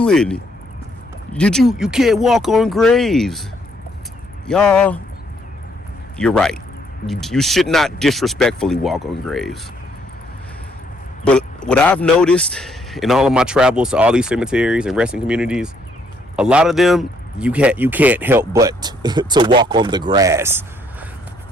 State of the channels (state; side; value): normal; both; correlation 0.69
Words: you can't walk on graves. Y'all, you're right. You should not disrespectfully walk on graves. what I've noticed in all of my travels to all these cemeteries and resting communities, a lot of them you can't help but to walk on the grass.